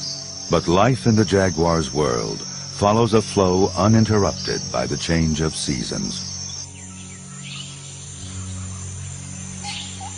But life in the jaguar's world follows a flow uninterrupted by the change of seasons.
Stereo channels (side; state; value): both; identical; correlation 1.00